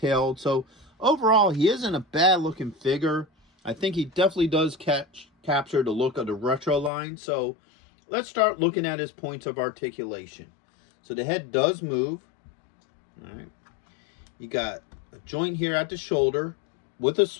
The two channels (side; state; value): right; drops out; at 6.9 s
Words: So overall, he isn't a bad looking figure. I think he definitely does capture the look of the retro line. So let's start looking at his points of articulation. So the head does move. All right. You got a joint here at the shoulder with a